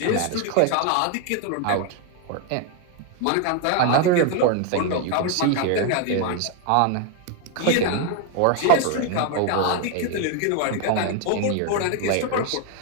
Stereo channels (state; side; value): different; both; correlation 0.01